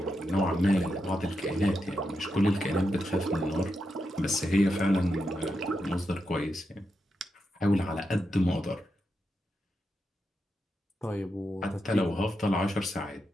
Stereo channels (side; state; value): both; normal; correlation 0.86